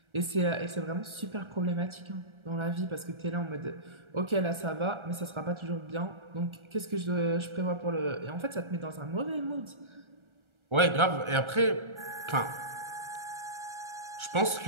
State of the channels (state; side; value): late; left; 1.3 ms